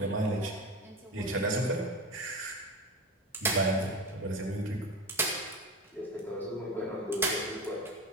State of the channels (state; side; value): normal; both; correlation 0.25